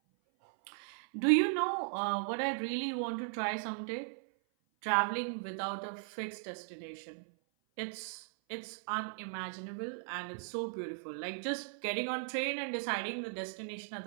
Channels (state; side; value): silent; left; 53 dB below the other